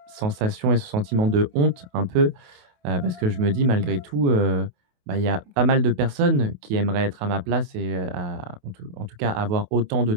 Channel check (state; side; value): late; left; 28 ms